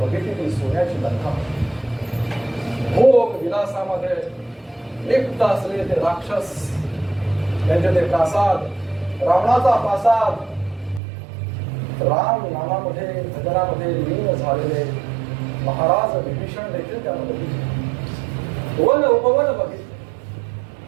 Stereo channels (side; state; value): left; drops out; at 11.0 s